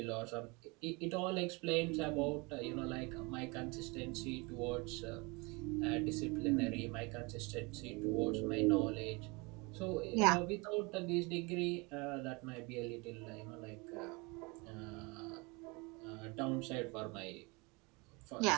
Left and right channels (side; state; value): left; quieter; 27.5 dB